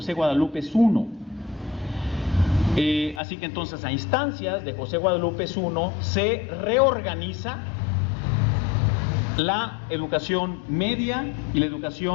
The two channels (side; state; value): right; drops out; at 3.2 s